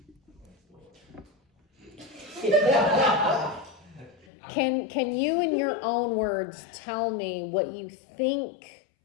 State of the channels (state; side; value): drops out; right; at 4.2 s